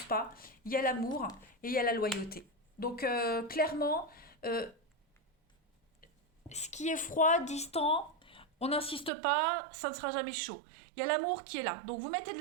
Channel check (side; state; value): left; drops out; at 9.1 s